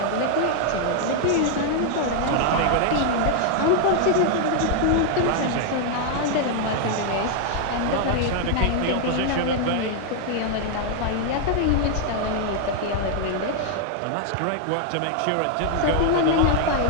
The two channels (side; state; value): both; different; correlation 0.00